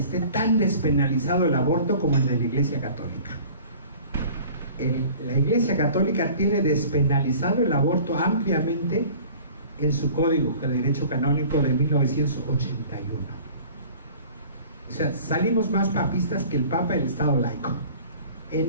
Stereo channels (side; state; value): both; inverted; correlation -0.46